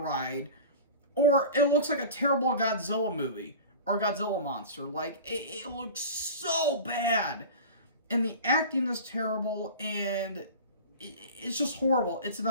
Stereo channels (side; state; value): both; inverted; correlation -0.35